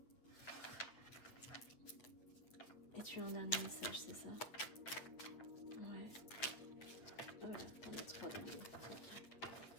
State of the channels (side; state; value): right; late; 8.4 ms